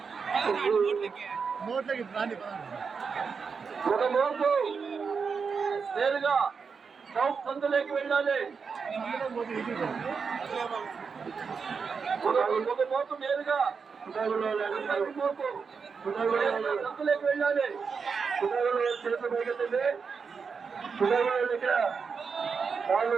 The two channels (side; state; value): left; quieter; 5.6 dB